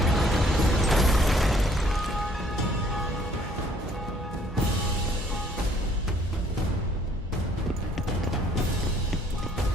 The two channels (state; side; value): normal; both; correlation 0.62